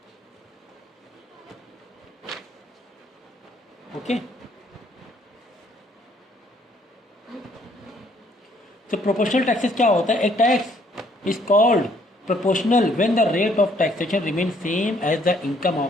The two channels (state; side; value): normal; both; correlation 0.65